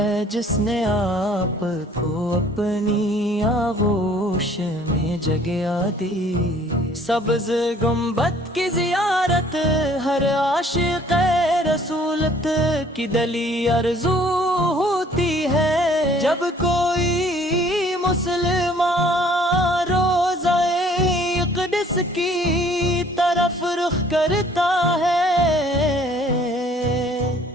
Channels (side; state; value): both; normal; correlation 0.57